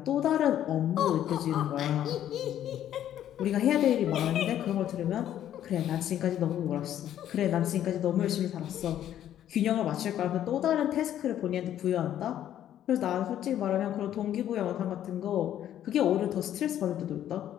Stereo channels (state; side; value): quieter; right; 11.2 dB